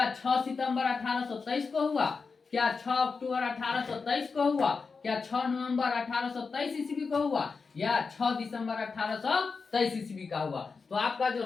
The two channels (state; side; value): quieter; right; 4.8 dB